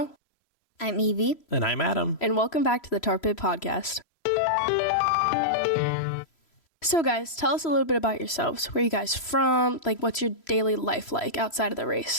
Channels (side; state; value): right; late; 3.0 ms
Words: I'm Evie. And I'm Adam. And welcome back to the Tar Pit Podcast. So guys, tell us a little bit about yourselves. Where are you guys from? Like, what's your daily life like outside of the